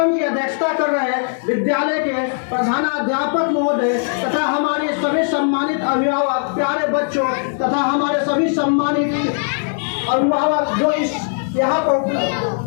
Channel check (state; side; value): silent; right; 67 dB below the other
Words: की अध्यक्षता कर रहे विद्यालय के प्रधानाध्यापक महोदय तथा हमारे सभी सम्मानित अभिभावक, प्यारे बच्चों तथा हमारे सभी सम्मानित अभिभावक जो इस यहाँ पर